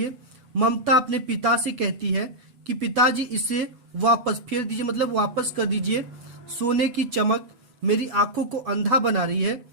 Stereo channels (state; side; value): late; left; 7.9 ms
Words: ममता अपने पिता से कहती है कि पिताजी इसे वापस फेर दीजिए, मतलब वापस कर दीजिए, सोने की चमक मेरी आंखों को अंधा बना रही है।